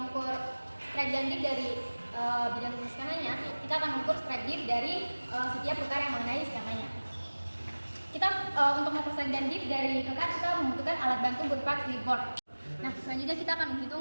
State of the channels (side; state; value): both; inverted; correlation -1.00